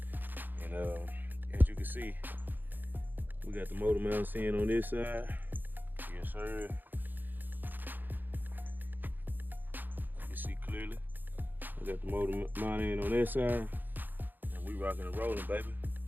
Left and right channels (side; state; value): left; late; 0.089 ms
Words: And as you can see, we got the motor mounts in on this side. Yes, sir. You see clearly. We got the motor mount in on that side, and we rocking and rolling, baby.